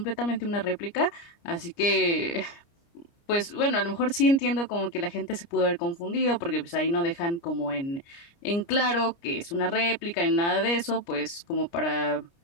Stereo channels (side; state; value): right; late; 29 ms